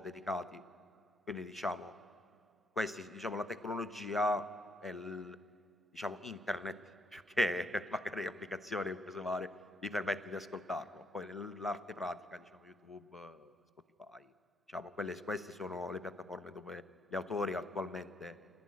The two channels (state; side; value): normal; both; correlation 0.72